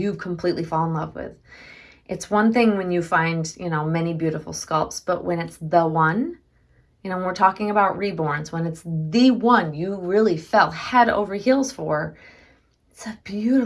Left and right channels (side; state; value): both; identical; correlation 1.00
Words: completely fall in love with. It's one thing when you find, many beautiful sculpts, but when it's the one, when we're talking about reborns, when it's the one you really fell head over heels for, it's a